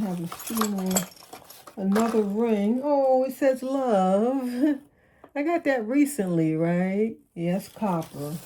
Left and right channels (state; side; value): identical; both; correlation 1.00